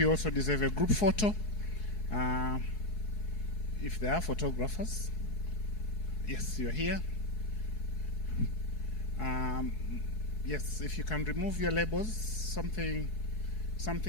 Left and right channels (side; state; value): right; late; 4.7 ms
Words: also deserve a group photo. If there are photographers. Yes, you're here. Yes, if you can remove your labels, something